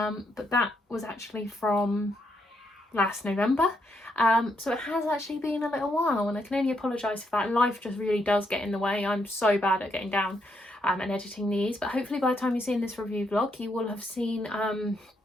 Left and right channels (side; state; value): both; normal; correlation 0.77